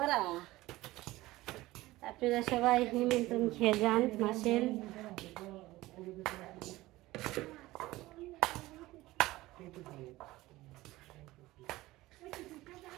আপনারা সবাই নিমন্ত্রণ খেয়ে যান মাসের।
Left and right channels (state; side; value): quieter; left; 18.2 dB